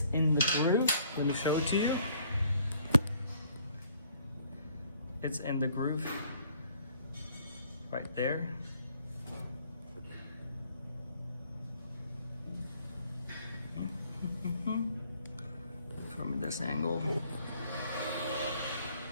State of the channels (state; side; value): inverted; both; correlation -0.61